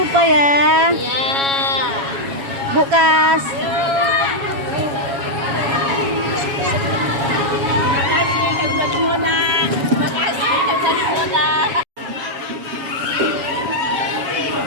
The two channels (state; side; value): late; left; 7.2 ms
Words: ya, Bu Kas.